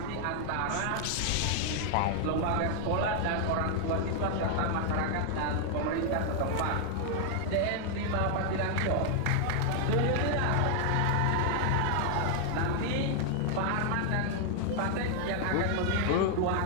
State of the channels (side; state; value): both; different; correlation 0.00